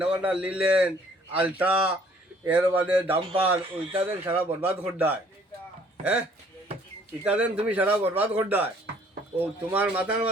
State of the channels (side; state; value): both; normal; correlation 0.59